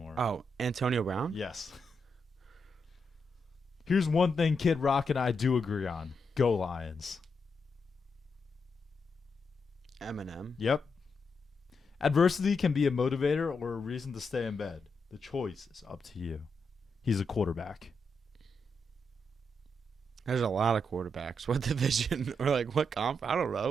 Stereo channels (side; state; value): both; normal; correlation 0.82